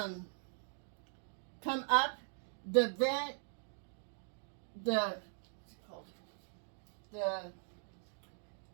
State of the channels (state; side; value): silent; left; digital silence